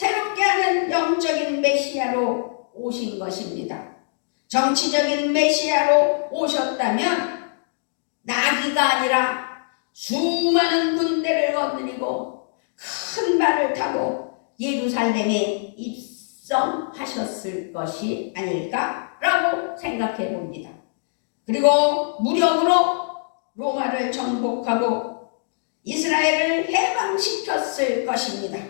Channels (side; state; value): right; silent; digital silence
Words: 하는 영적인 메시아로 오신 것입니다. 정치적인 메시아로 오셨다면 나귀가 아니라 수많은 군대를 거느리고 큰 말을 타고 예루살렘에 입성하셨을 것이 아닐까라고 생각해 봅니다. 그리고 무력으로 로마를 정복하고 이스라엘을 해방시켰을 것입니다.